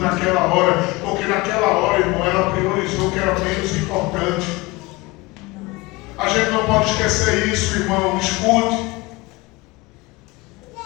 hora, porque naquela hora, irmão, ela priorizou o que era menos importante. A gente não pode esquecer isso, irmão. Escute.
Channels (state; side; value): quieter; right; 22.7 dB